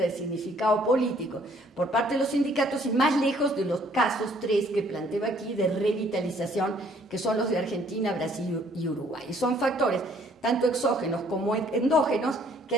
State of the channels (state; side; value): normal; both; correlation 0.62